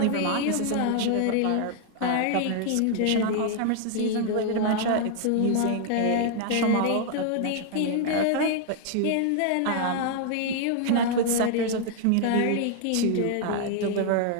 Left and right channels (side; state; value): both; different; correlation 0.00